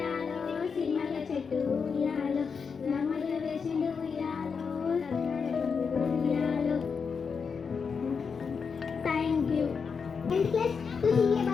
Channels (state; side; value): quieter; right; 5.8 dB